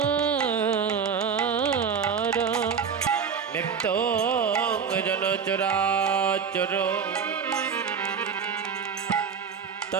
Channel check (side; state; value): left; quieter; 6.6 dB